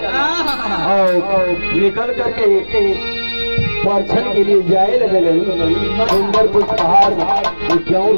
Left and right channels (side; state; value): both; inverted; correlation -1.00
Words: और निकल करके परछन के लिए जाए लगे सुंदर पुष्पहार क्यों